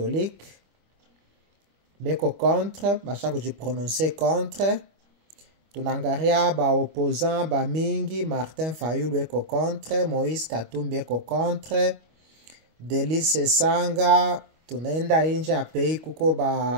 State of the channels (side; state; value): left; late; 25 ms